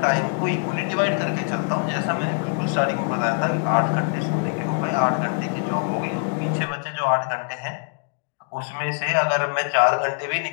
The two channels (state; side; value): quieter; right; 38.3 dB